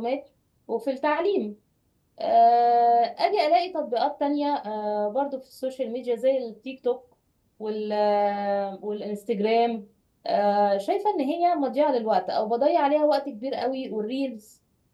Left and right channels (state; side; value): identical; both; correlation 1.00